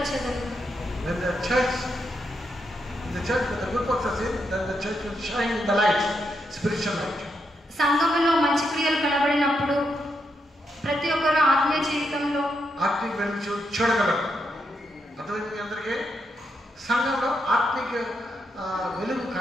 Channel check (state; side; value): normal; both; correlation 0.81